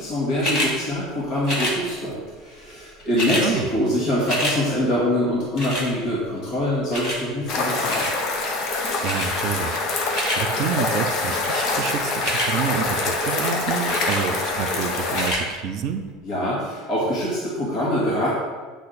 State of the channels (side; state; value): both; normal; correlation 0.35